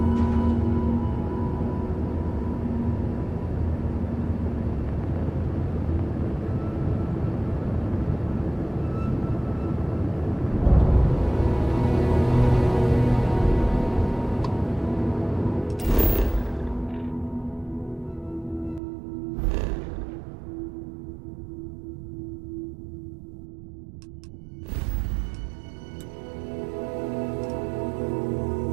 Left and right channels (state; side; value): drops out; left; at 18.8 s